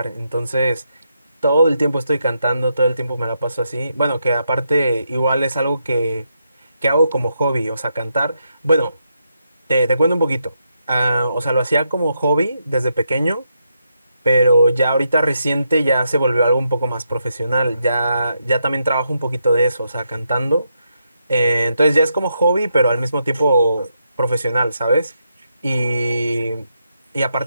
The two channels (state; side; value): inverted; both; correlation -0.82